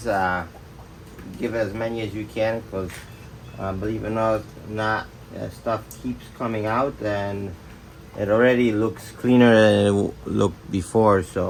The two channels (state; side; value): identical; both; correlation 1.00